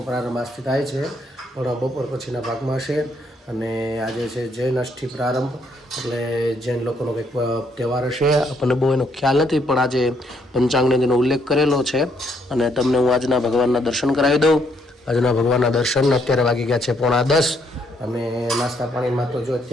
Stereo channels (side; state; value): both; normal; correlation 0.72